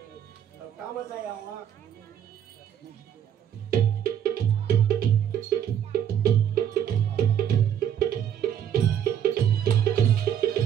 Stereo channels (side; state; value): left; quieter; 9.5 dB